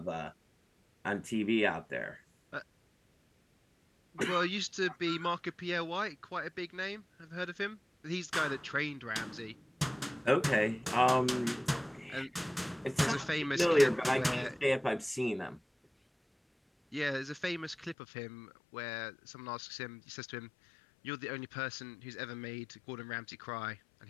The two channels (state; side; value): drops out; right; at 17.9 s